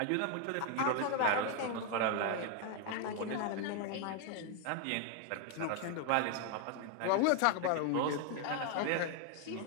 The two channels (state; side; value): different; both; correlation 0.01